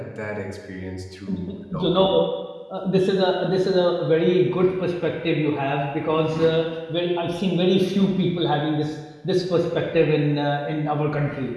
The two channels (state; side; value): identical; both; correlation 1.00